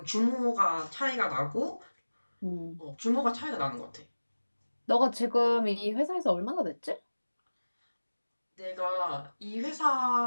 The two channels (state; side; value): inverted; both; correlation -1.00